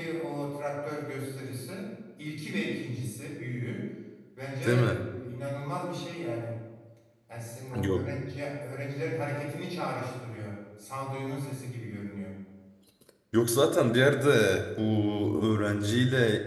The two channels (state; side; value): identical; both; correlation 1.00